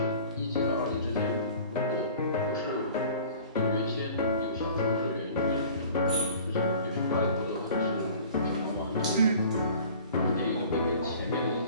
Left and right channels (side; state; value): both; inverted; correlation -0.46